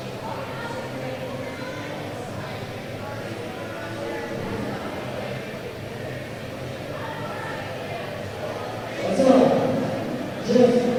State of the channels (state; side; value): identical; both; correlation 1.00